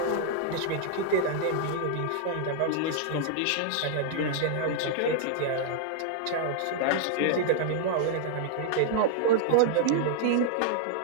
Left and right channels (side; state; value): both; different; correlation -0.01